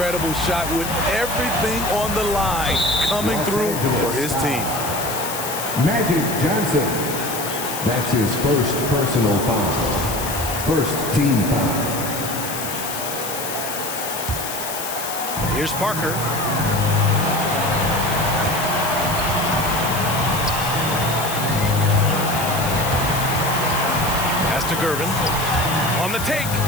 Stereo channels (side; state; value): left; noise; hiss, 7 dB below the sound